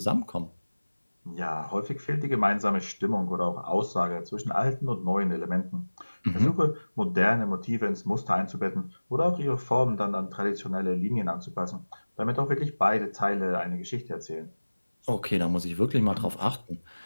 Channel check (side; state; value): both; inverted; correlation -1.00